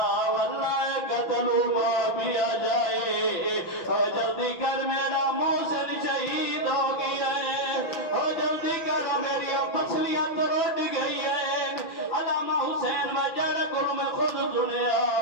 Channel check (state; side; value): late; right; 6.0 ms